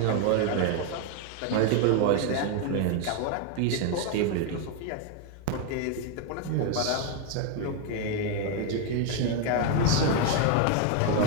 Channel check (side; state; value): both; different; correlation 0.01